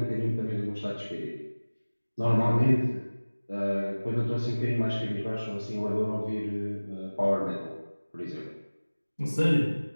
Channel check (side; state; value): both; inverted; correlation -1.00